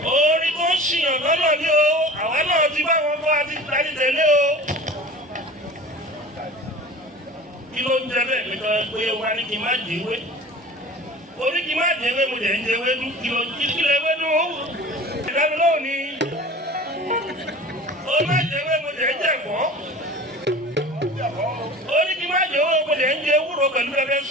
Orin tó ń ṣìyàn lọ́nà ni o, àwa náà ti bá wọn kọ́ àti tẹ̀lé o. Kí ló ń jẹ bẹ́ẹ̀ pé wá ní kí n má jẹ́wé? Orí kí n má jẹ́wé mo jẹ́ ń jẹ́wé dún kí lè wé dún ó. Ìdájọ́ náà ni orí má jẹ́wé mo jẹ́ ń jẹ̀fọ́. Orí kí n má jẹ́wé mo jẹ́ ń jẹ ewúro pẹ̀lú pẹpẹ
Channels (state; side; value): normal; both; correlation 0.39